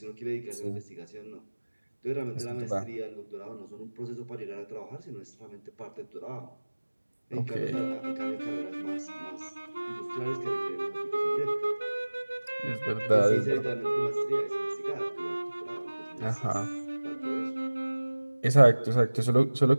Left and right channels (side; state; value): both; inverted; correlation -1.00